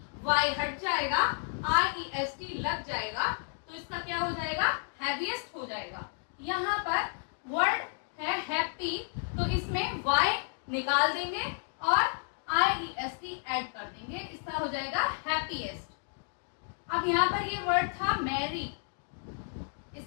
Y हट जाएगा, आई ई एस टी लग जाएगा, तो इसका क्या हो जाएगा, हैवीएस्ट हो जाएगा। यहाँ पर वर्ड है हैप्पी, तो इसमें वाई निकाल देंगे और I E S T add कर देंगे, इसका हो जाएगा हैप्पीएस्ट। अब यहाँ पर ये वर्ड था मैरी,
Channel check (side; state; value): right; silent; 57 dB below the other